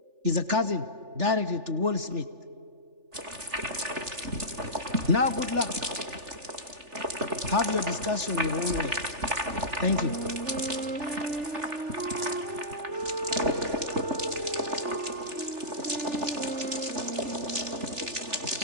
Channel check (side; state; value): left; late; 3.4 ms